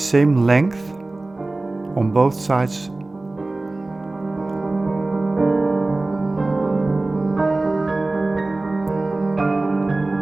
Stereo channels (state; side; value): quieter; left; 3.0 dB